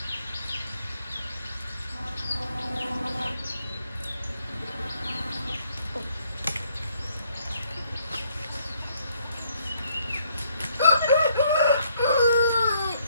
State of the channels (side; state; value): both; inverted; correlation -0.68